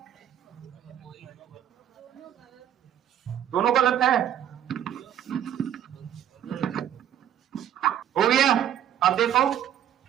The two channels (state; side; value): quieter; left; 10.4 dB